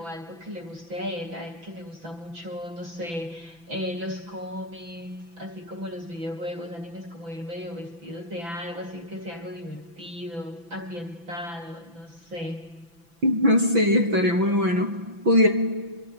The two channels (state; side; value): late; left; 6.0 ms